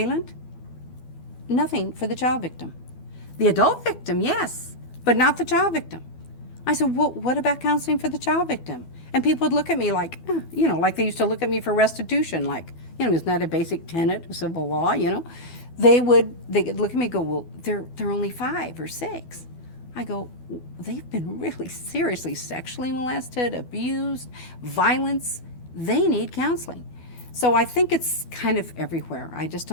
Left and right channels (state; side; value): late; right; 12 ms